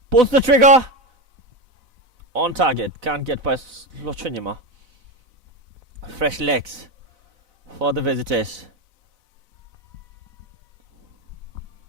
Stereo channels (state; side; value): late; left; 4.0 ms